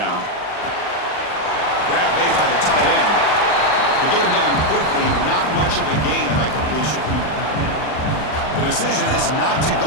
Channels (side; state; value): right; late; 39 ms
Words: Grab made by the tight end. To get him down quickly, not much of a gain on that completion. The decision is not to go